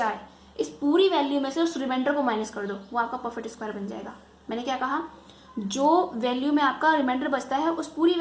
है इस पूरी वैल्यू में से उस रिमाइंडर को माइनस कर दो, वो आपका परफेक्ट स्क्वायर बन जाएगा। मैंने क्या कहा, जो वैल्यू में आपका रिमाइंडर बचता है उस पूरी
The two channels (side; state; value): both; identical; correlation 1.00